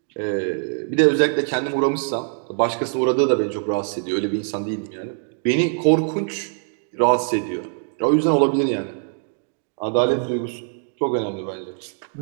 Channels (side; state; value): left; silent; 64 dB below the other